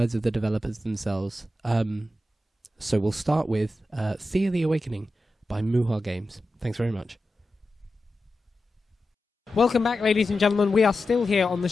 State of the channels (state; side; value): normal; both; correlation 0.92